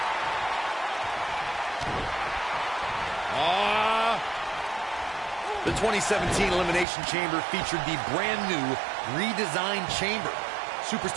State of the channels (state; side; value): drops out; left; at 6.9 s